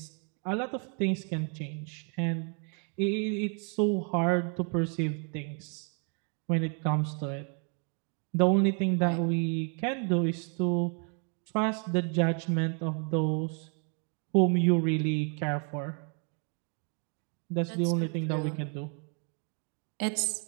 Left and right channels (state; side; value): quieter; left; 40.0 dB